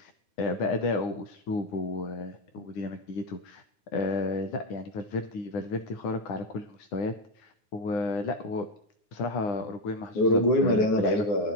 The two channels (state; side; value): late; right; 9.8 ms